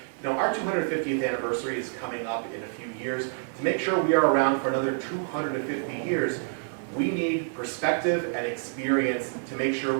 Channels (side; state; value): left; silent; 60 dB below the other